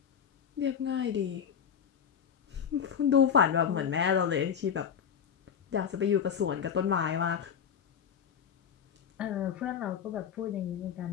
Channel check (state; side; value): quieter; right; 7.8 dB